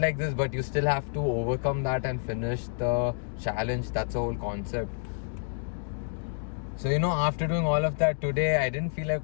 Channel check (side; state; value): right; silent; digital silence